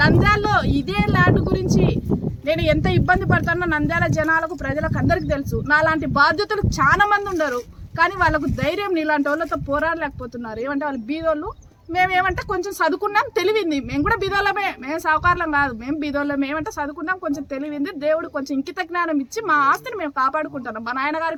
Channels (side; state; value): both; identical; correlation 1.00